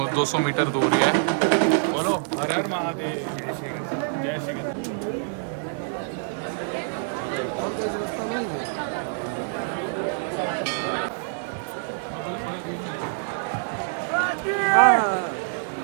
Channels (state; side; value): silent; left; 61 dB below the other